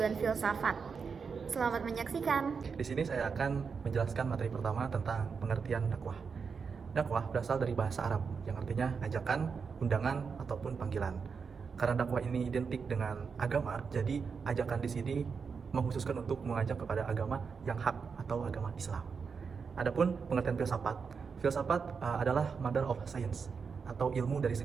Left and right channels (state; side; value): quieter; left; 5.6 dB